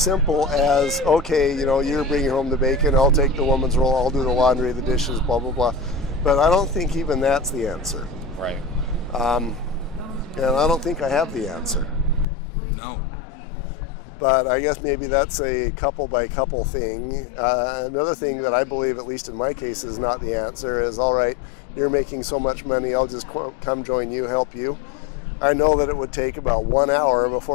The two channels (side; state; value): right; drops out; at 12.2 s